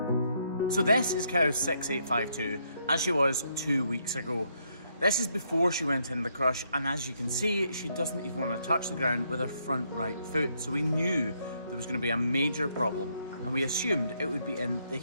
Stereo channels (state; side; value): inverted; both; correlation -0.74